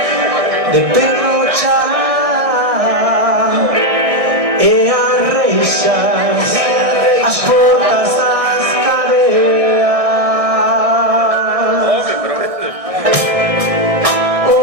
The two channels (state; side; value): late; left; 1.6 ms